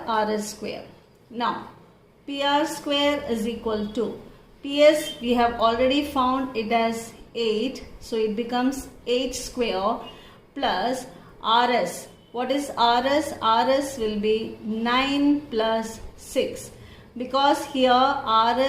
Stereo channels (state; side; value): identical; both; correlation 1.00